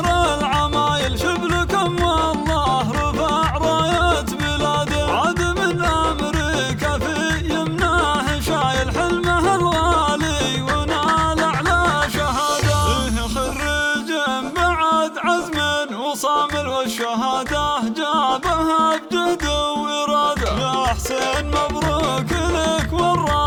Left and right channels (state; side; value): identical; both; correlation 1.00